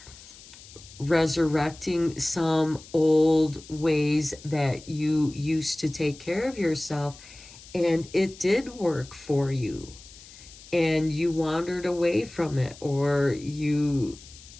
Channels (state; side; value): noise; left; hiss, 19 dB below the sound